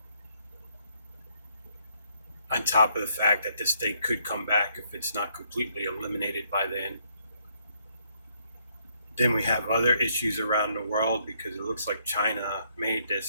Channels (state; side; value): inverted; both; correlation -0.71